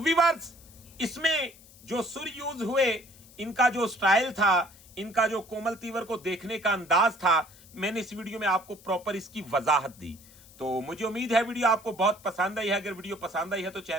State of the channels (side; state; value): left; noise; hiss, 23 dB below the sound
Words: इसमें जो सुर यूज हुए, इनका जो स्टाइल था, इनका जो कोमल तीवर को देखने का अंदाज था, मैंने इस वीडियो में आपको प्रॉपर इसकी वजाहत दी। तो मुझे उम्मीद है वीडियो आपको बहुत पसंद आई है। अगर वीडियो पसंद आई है तो